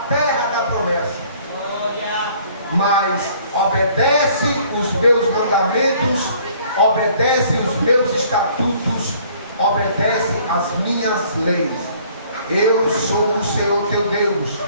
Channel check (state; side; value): inverted; both; correlation -0.58